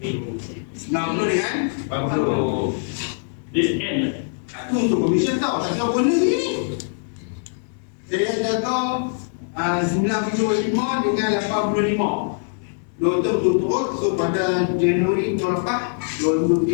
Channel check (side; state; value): right; silent; digital silence